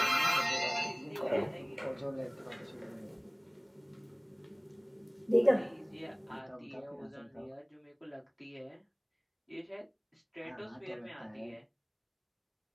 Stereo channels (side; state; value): both; identical; correlation 1.00